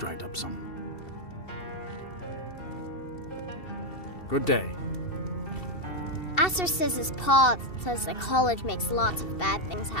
up some. Good day. Aster says his pa says the college makes lots of bad things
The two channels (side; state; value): right; late; 2.7 ms